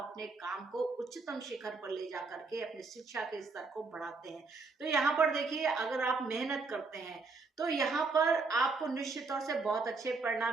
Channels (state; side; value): quieter; left; 4.1 dB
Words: काम को उच्चतम शिखर पर ले जा करके अपने शिक्षा के स्तर को बढ़ाते हैं। तो यहाँ पर देखिए, अगर आप मेहनत करते हैं तो यहाँ पर आपको निश्चित तौर से बहुत अच्छे